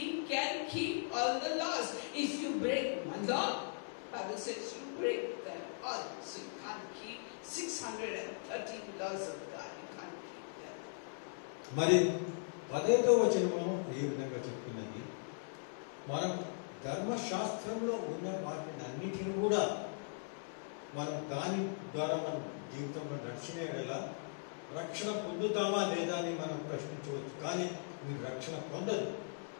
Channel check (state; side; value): silent; right; digital silence